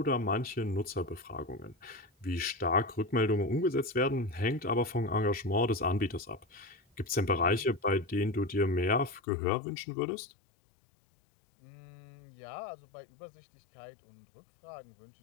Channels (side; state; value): right; drops out; at 9.2 s